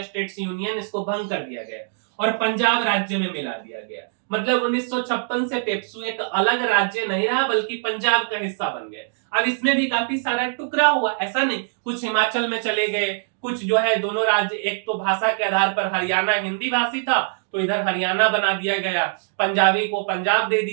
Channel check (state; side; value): silent; left; digital silence